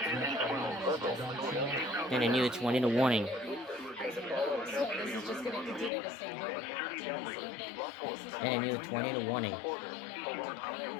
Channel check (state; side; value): drops out; right; at 5.9 s